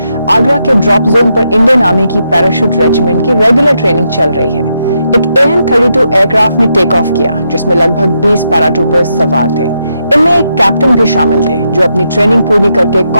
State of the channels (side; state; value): both; inverted; correlation -0.82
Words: आगरा के ड्रॉप जोन पर इंडियन आर्मी की पैराशूट रेजिमेंट की रेगुलर ट्रेनिंग चल रही है। एक AN-32 एयरक्राफ्ट ने टेक ऑफ किया, जिसमें लगभग 20 पैराट्रूपर्स सवार थे। इनमें एक कैप्टन भी शामिल थे, जो अपनी ट्रेनिंग पूरी करके